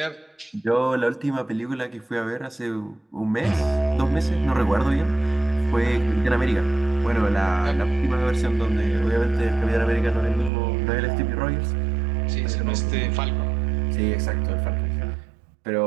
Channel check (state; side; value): drops out; left; at 10.5 s